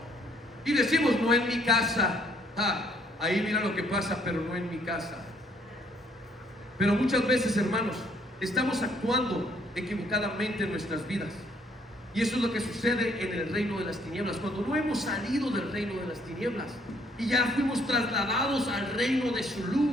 Y decimos: no en mi casa. Ahí mira lo que pasa, pero no en mi casa. Pero muchas veces, hermanos, estamos actuando equivocadamente en nuestras vidas. Y eso es lo que sucede en el reino de las tinieblas, cuando no hemos salido del reino de las tinieblas y ya fuimos trasladados al reino de su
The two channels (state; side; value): normal; both; correlation 0.65